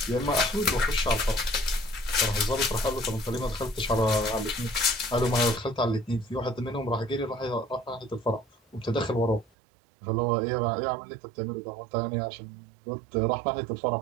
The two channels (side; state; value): left; drops out; at 9.5 s